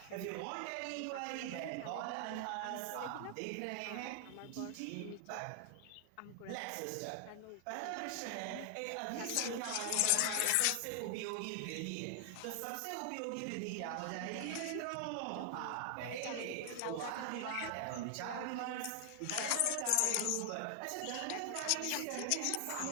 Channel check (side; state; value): both; different; correlation 0.00